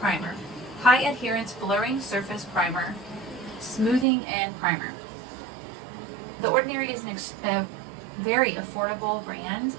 High Adherence Blurring Surface Primer, Smoothing and Primer. The Ordinary is a very affordable brand,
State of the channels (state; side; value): drops out; left; at 4.0 s